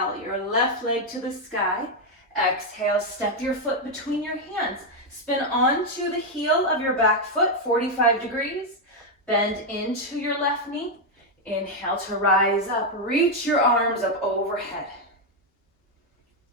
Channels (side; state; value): both; normal; correlation 0.02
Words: your left leg to the sky. Exhale, step your foot between your hands. Spin onto the heel of your back foot, 45 degrees. Bend into your left knee. Inhale to rise up. Reach your arms up overhead.